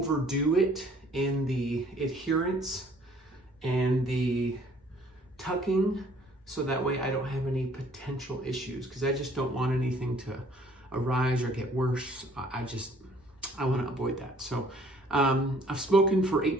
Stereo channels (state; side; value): normal; both; correlation 0.58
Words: it in the adherence and the tucking, so that way I don't have any potential issues, because I just don't want anything to arise or get worse. I want to avoid that. So I've spoken for